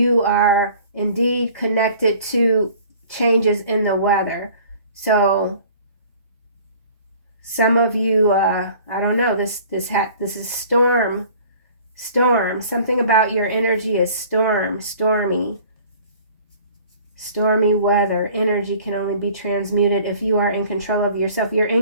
are indeed connected to changes in the weather. So some of you, I don't know, this is storm. Something about your energy is stormy weather. Energy can only be transmuted if you are in control of yourself. You're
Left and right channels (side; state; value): both; inverted; correlation -0.49